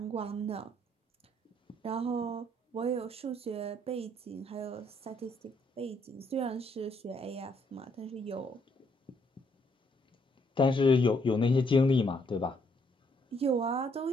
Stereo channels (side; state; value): both; normal; correlation 0.71